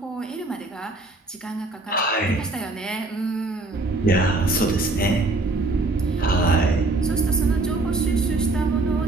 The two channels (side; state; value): left; quieter; 3.0 dB